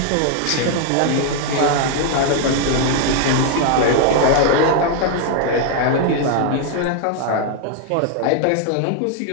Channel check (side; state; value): both; different; correlation 0.00